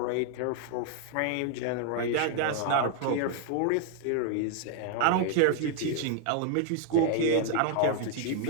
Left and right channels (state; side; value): different; both; correlation 0.00